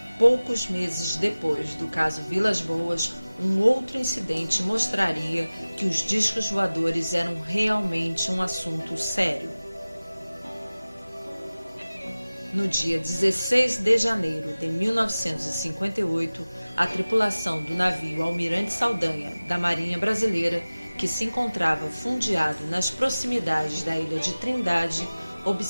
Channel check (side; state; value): both; inverted; correlation -0.98